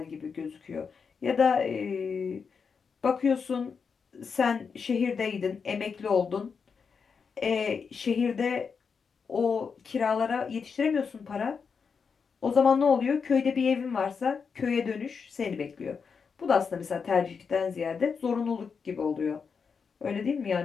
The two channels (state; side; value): quieter; right; 5.8 dB